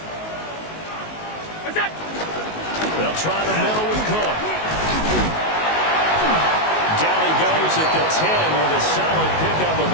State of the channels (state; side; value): late; right; 19 ms